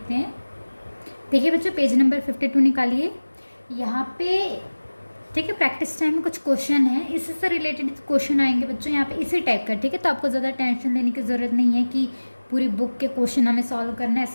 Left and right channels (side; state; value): both; inverted; correlation -1.00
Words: हैं। देखिए बच्चों, पेज नंबर 52 निकालिए यहाँ पे। ठीक है, प्रैक्टिस टाइम में कुछ क्वेश्चन है, इसी से रिलेटेड क्वेश्चन आएंगे बच्चों यहाँ पे इसी टाइप का। ठीक है, तो आपको ज़्यादा टेंशन लेने की ज़रूरत नहीं है कि पूरी बुक के क्वेश्चन हमें सॉल्व करना है,